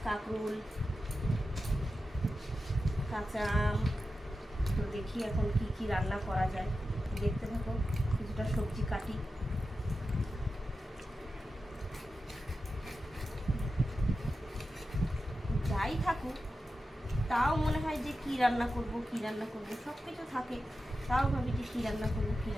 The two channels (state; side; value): normal; both; correlation 0.91